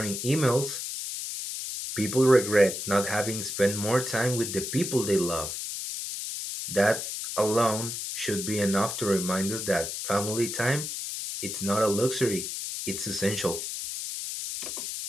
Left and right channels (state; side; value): noise; left; hiss, 5 dB below the sound